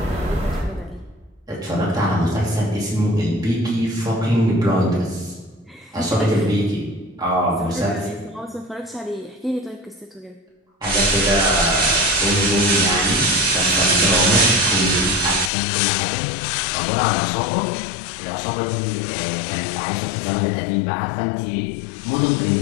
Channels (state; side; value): drops out; right; at 15.5 s